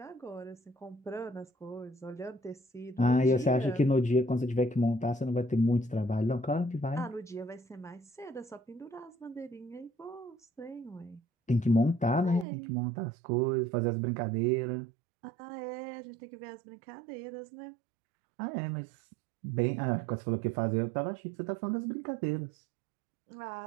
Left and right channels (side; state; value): left; drops out; at 12.5 s